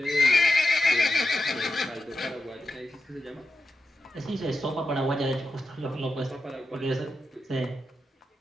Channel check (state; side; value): normal; both; correlation 0.90